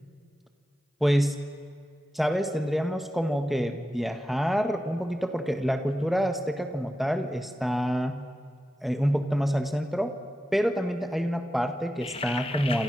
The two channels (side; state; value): both; normal; correlation 0.91